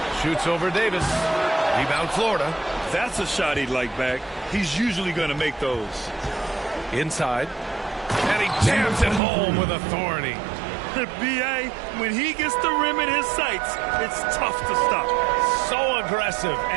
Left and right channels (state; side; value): drops out; left; at 9.2 s